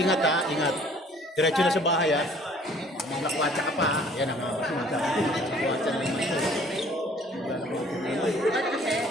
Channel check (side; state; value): both; normal; correlation 0.55